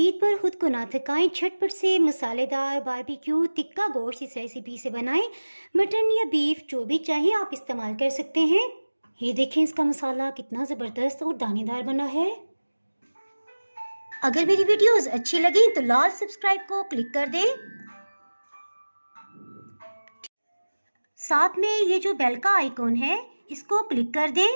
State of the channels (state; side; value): inverted; both; correlation -1.00